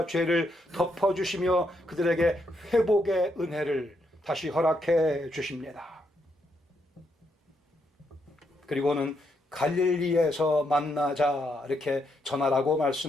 죄를 덮어주시며 그들에게 회복의 은혜를 다시 허락해 주십니다. 그리고는 갈릴리에서 만나자 이렇게 전하라고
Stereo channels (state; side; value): normal; both; correlation 0.78